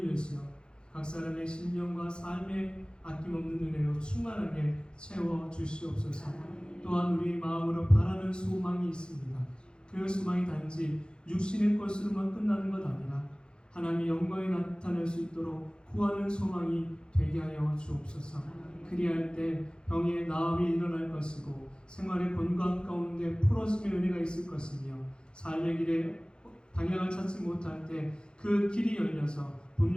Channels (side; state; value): right; late; 0.050 ms